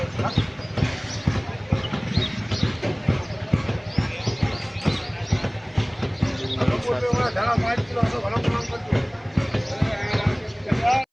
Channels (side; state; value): both; identical; correlation 1.00